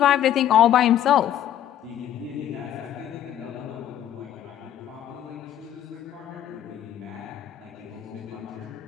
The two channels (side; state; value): right; quieter; 11.1 dB